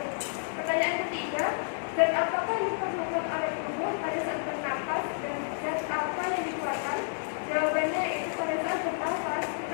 Pertanyaan ketiga, zat apakah yang diperlukan oleh tubuh pada saat bernapas dan zat apa yang dikeluarkan? Jawabannya itu pada saat bernapas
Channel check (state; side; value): silent; right; 58 dB below the other